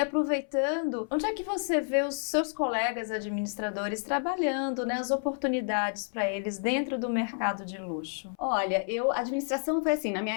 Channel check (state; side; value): silent; right; 58 dB below the other